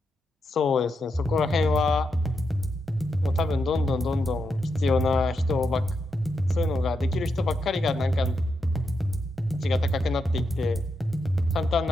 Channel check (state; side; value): normal; both; correlation 0.84